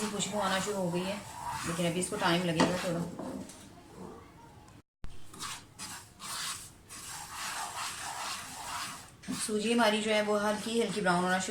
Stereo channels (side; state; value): both; identical; correlation 1.00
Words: खुशबू आना शुरू हो गई है। लेकिन अभी इसको टाइम लगेगा थोड़ा। सूजी हमारी जो है वो हल्की हल्की ब्राउन होना